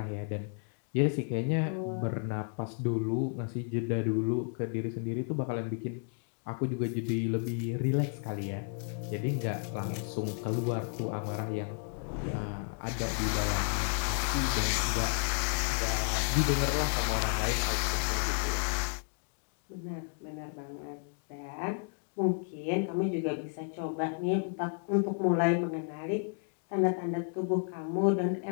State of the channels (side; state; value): right; silent; 56 dB below the other